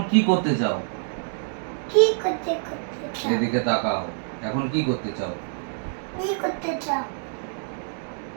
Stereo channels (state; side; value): silent; left; digital silence